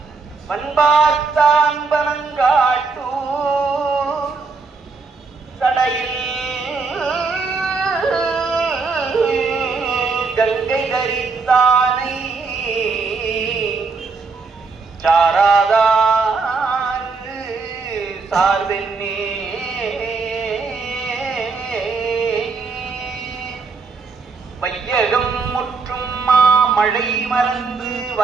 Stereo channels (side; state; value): left; quieter; 4.5 dB